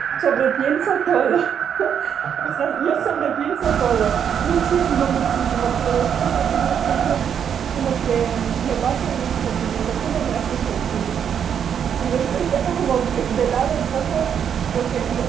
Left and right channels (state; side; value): quieter; left; 8.2 dB